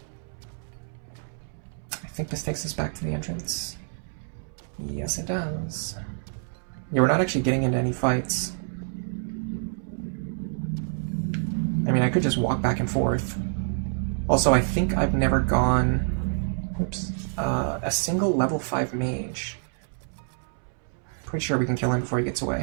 I think this takes us back to the entrance. Yes, it does. Yeah, we're not actually getting into any fights. I mean, I could just walk back and forth. Also, I think I've never gone... Oops. A single level 5 mage. Pretty sure we can kill him before he gets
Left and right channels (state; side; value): silent; left; 60 dB below the other